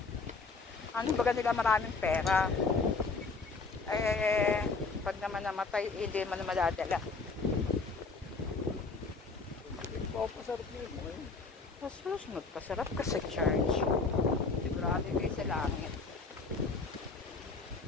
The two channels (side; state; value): right; quieter; 4.2 dB